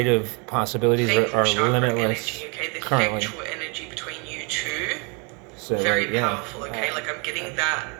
possibilities the are chakra limitless energy, okay? The currently. sexual energy between you two, So very like, yeah, powerful, okay? Like, I'm getting that.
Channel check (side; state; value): left; quieter; 33.0 dB